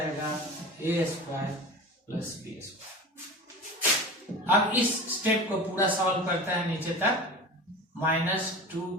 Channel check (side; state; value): both; normal; correlation 0.32